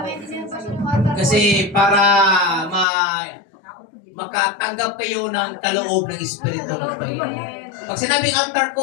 Kasi para makatanggap kayo ng kaloob ng Espiritu ng Panginoon. Pag sinabing altar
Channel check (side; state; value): right; drops out; at 2.9 s